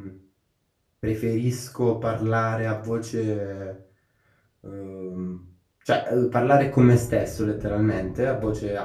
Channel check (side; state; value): both; identical; correlation 1.00